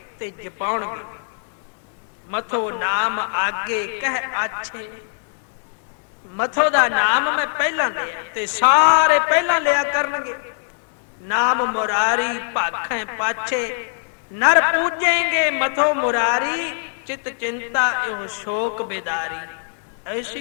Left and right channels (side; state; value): right; silent; 64 dB below the other